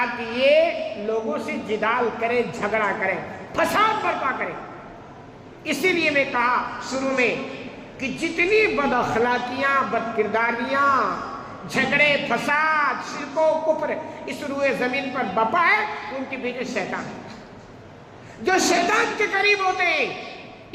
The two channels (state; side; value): identical; both; correlation 1.00